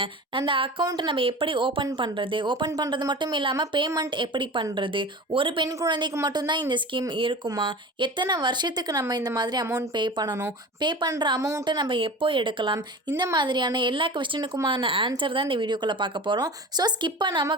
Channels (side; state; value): both; normal; correlation 0.34